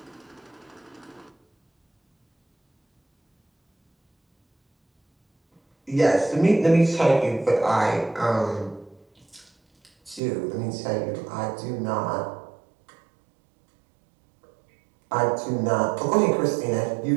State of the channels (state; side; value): drops out; left; at 10.2 s